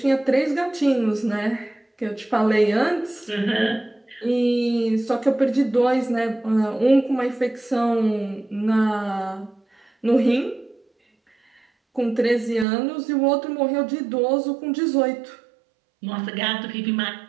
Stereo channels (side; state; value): left; drops out; at 12.7 s